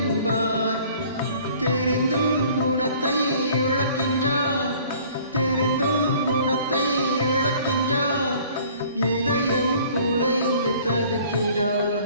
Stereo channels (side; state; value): both; inverted; correlation -0.53